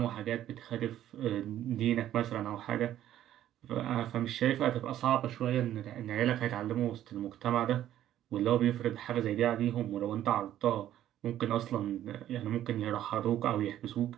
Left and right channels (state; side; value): quieter; left; 12.0 dB